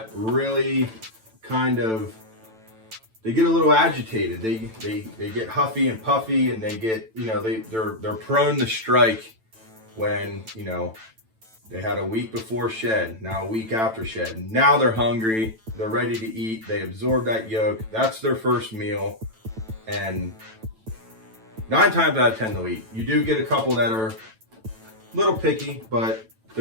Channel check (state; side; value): late; left; 9.0 ms